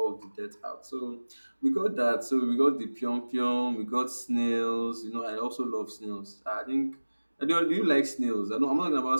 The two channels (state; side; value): inverted; both; correlation -1.00